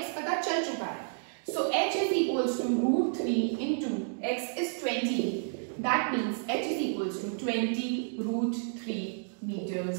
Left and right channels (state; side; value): silent; left; digital silence